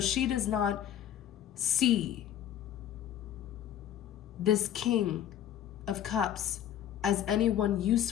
does not see this King of Cups as anyone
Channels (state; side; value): quieter; right; 10.8 dB